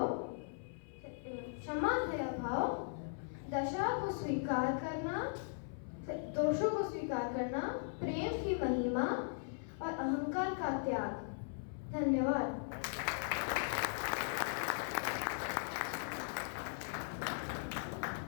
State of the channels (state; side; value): silent; right; 52 dB below the other